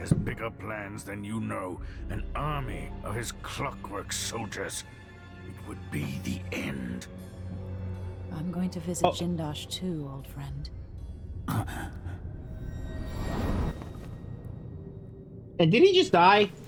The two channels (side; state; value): both; identical; correlation 1.00